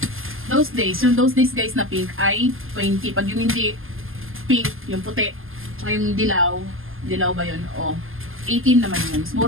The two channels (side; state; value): left; late; 0.59 ms